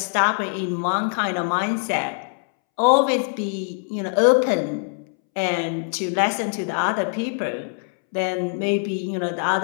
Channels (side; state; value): right; silent; 63 dB below the other